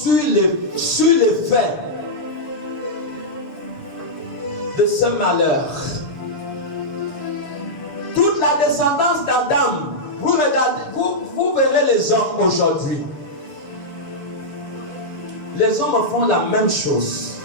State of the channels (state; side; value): late; right; 6.8 ms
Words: l'effet de ce malheur. Toute la descendance d'Adam, vous regardez, vous verrez les hommes aujourd'hui. Les hommes font la même chose.